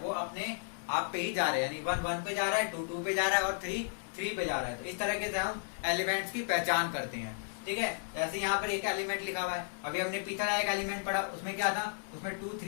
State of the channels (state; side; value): silent; right; digital silence